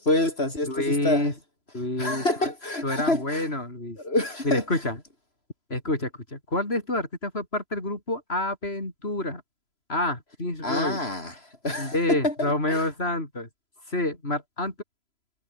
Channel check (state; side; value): late; right; 3.0 ms